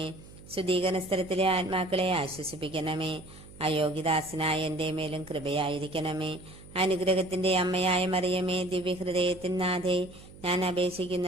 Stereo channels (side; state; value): right; noise; hum, 19 dB below the sound